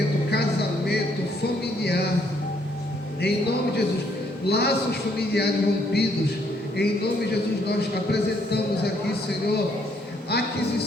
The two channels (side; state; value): both; normal; correlation 0.69